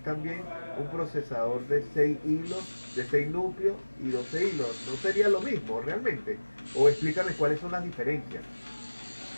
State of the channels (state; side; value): inverted; both; correlation -1.00